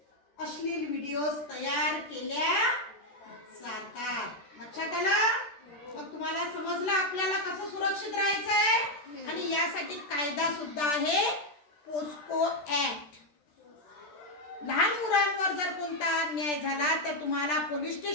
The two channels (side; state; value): right; late; 13 ms